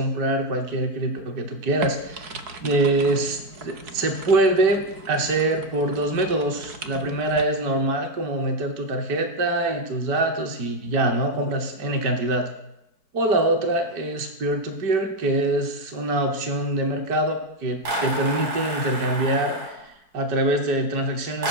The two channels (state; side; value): late; left; 4.5 ms